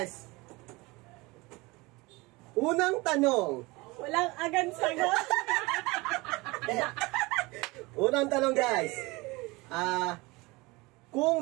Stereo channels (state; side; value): quieter; left; 23.6 dB